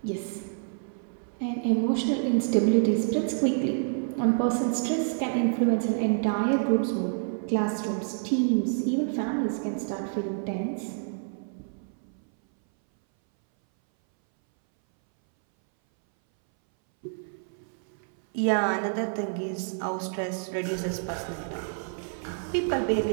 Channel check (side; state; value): left; silent; 59 dB below the other